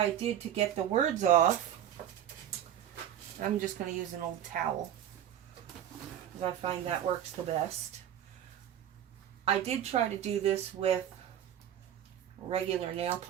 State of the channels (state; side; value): quieter; left; 10.6 dB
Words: did to get the words off, I'm just going to use an old towel, because I find that works the best. I did try to do this with regular nail